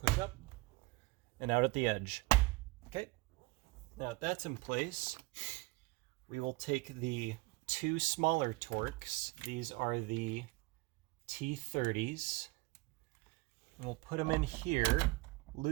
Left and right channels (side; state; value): left; quieter; 23.2 dB